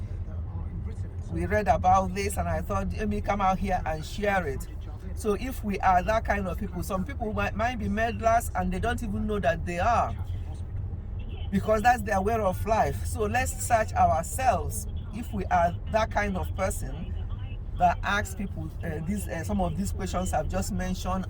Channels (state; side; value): identical; both; correlation 1.00